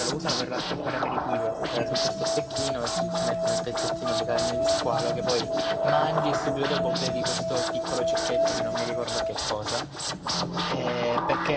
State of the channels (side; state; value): both; identical; correlation 1.00